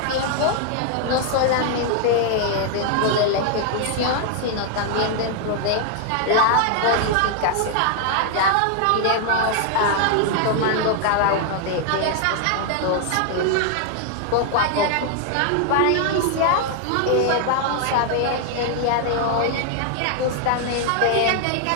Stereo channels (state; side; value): different; both; correlation 0.00